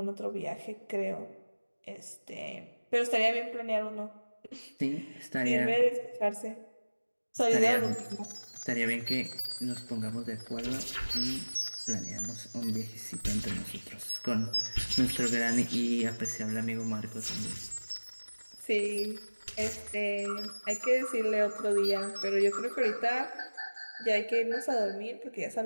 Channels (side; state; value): both; inverted; correlation -1.00